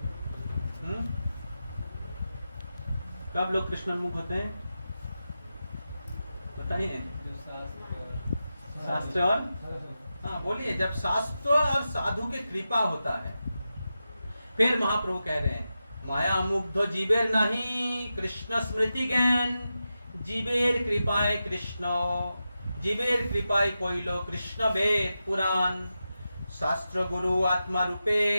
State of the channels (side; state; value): both; inverted; correlation -0.91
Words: कब लोग कृष्णोन्मुख होते हैं, बताइए। शास्त्र और बोलिए, जब शास्त्र और साधु के कृपा होता है। फिर महाप्रभु कह रहे हैं, माया मुग्ध जीवेर नहीं कृष्ण स्मृति ज्ञान, जीवेर कृपाए कृष्ण, जीवेर कृपाए कोइलो कृष्ण वेद पुराण, शास्त्र गुरु आत्मा